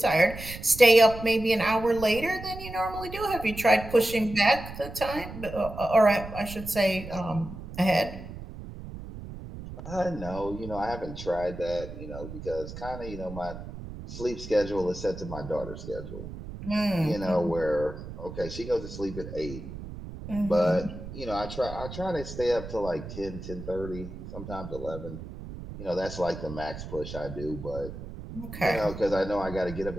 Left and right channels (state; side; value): noise; right; rumble, 11 dB below the sound